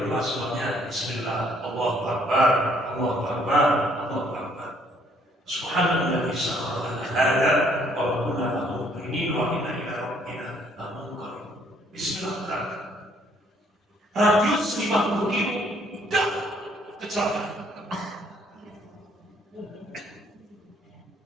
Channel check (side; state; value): both; normal; correlation 0.65